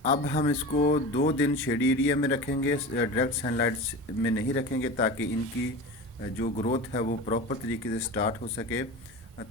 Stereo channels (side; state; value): both; normal; correlation 0.30